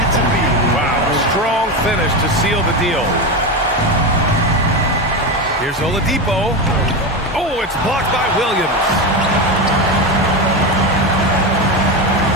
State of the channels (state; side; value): normal; both; correlation 0.17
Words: to be. Wow, strong finish to seal the deal. Here's Oladipo. Oh, it's blocked by Williams.